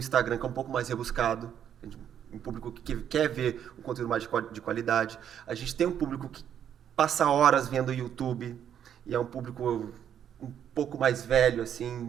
que é um pouco mais rebuscado, um público que quer ver um conteúdo mais de qualidade. A gente tem um público que passa horas vendo YouTube e é um público um pouco mais velho,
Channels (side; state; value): left; quieter; 9.3 dB